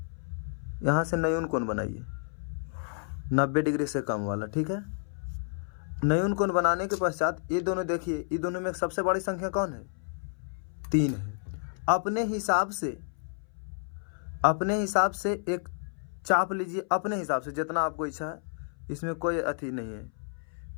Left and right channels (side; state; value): right; silent; 58 dB below the other